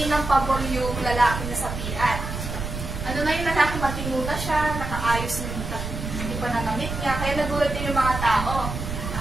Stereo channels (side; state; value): right; noise; rumble, 6 dB below the sound